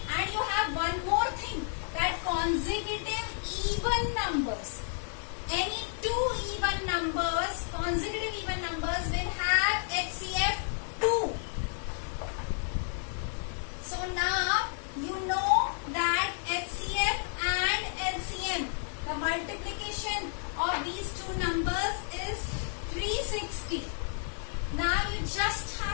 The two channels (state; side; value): silent; right; 57 dB below the other